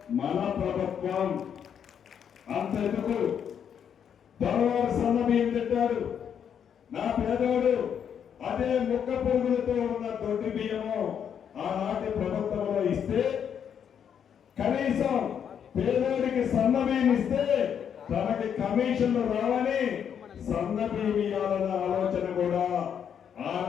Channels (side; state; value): right; quieter; 8.2 dB